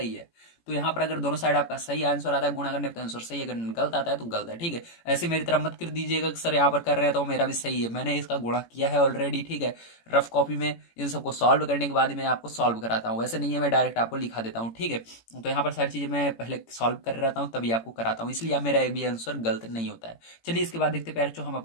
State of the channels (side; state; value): right; late; 18 ms